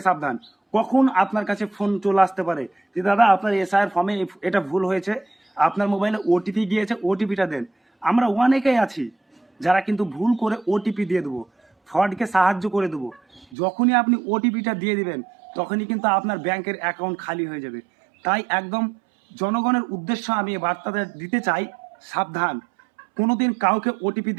সাবধান। কখন আপনার কাছে ফোন চলে আসতে পারে যে দাদা আপনার এসআইয়ের ফর্মে এটা ভুল হয়েছে, আপনার মোবাইলে ওটিপি গিয়েছে, ওটিপিটা দেন। আমরা অনেকেই আছি যারা কিন্তু ভুল করে ওটিপি দিয়ে দেবো, ফ্রডকে সাহায্য করে দেবো। যখনই আপনি ওটিপিটা দিয়ে দিবেন, তখনই কিন্তু আপনার ব্যাংকের অ্যাকাউন্ট খালি হয়ে যাবে। তাই একদম জনগণের উদ্দেশ্য আমি এই বার্তাটা দিতে চাই, সাবধান। কোনোদিন কাউকে ওটিপি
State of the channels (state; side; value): drops out; left; at 13.6 s